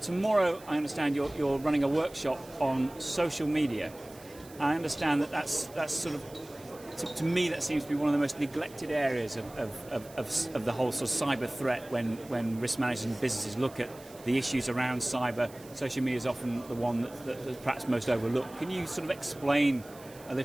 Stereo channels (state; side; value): noise; right; hiss, 21 dB below the sound